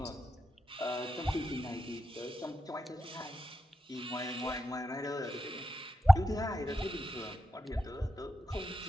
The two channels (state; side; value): normal; both; correlation 0.88